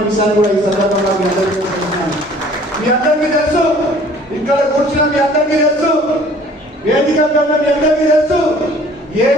విషయాన్ని కూడా ఈ సందర్భంగా మీ అందరికీ తెలుస్తున్నాను. మీ అందరికీ తెలుసు, ఇక్కడ కూర్చున్న మీ అందరికీ తెలుసు, వేదిక మీ అందరికీ తెలుసు ఏ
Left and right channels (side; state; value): both; normal; correlation 0.53